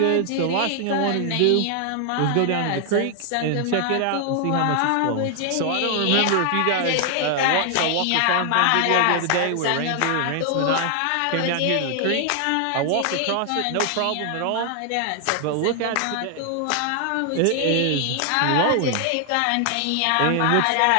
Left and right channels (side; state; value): both; different; correlation 0.00